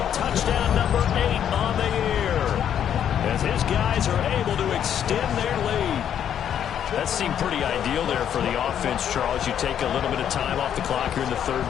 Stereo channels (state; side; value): quieter; right; 9.4 dB